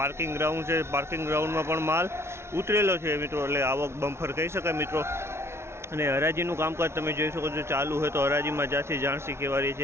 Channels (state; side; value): late; left; 0.13 ms